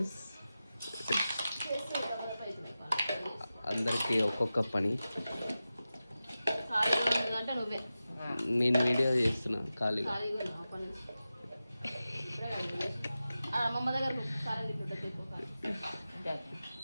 అందరికీ ఒక్కొక్క పని. నేను వీడియో చేస్తున్నా ఖాళీగా.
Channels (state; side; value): inverted; both; correlation -0.94